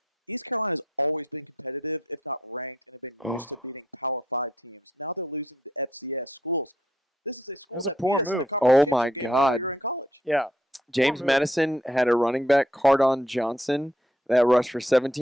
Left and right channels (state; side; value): normal; both; correlation 0.71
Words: Oh. That was a poor move. Oh my God. Yeah. James Madison had a running back, Cardon Johnson, that rushed for